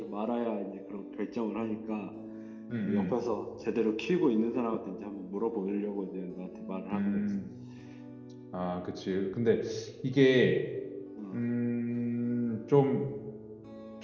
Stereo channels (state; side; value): identical; both; correlation 1.00